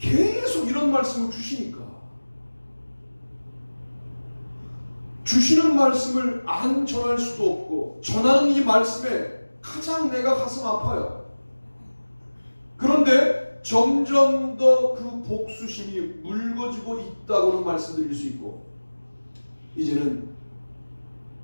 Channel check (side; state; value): both; inverted; correlation -1.00